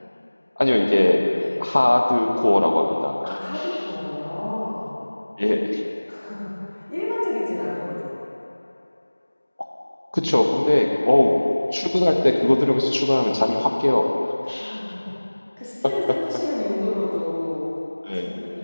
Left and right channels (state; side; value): inverted; both; correlation -1.00